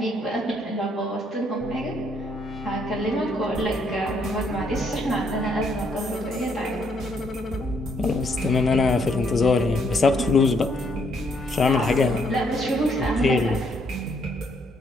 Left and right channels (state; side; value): normal; both; correlation 0.71